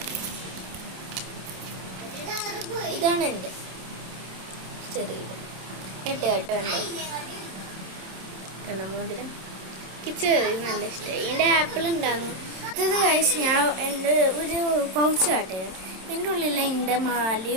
ഇതാണ് എൻ്റെ ചെറിയത്. മോതിരം ചെറിയ നല്ല ഇഷ്ടമായി. എൻ്റെ ആപ്പിൾ ഉണ്ടായിരുന്നു. ഇത് കഴിച്ച് ഞാൻ എൻ്റെ ഒരു പൗച്ച് കാട്ടിയത്. എൻ്റെ ഉള്ളിൽ എൻ്റെ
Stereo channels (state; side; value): late; left; 27 ms